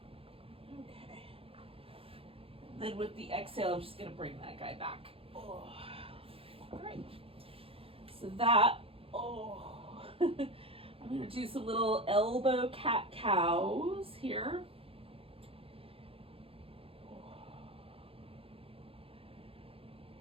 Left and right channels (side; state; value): left; late; 0.27 ms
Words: Okay. Then with the exhale, I'm just going to bring that guy back. Oh. All right. So that, oh. I'm going to do some little elbow cat-cows here.